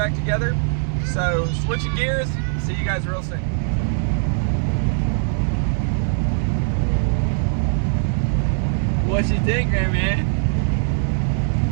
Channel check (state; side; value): silent; left; digital silence